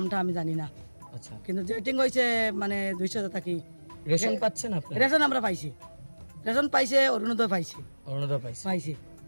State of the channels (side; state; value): both; inverted; correlation -1.00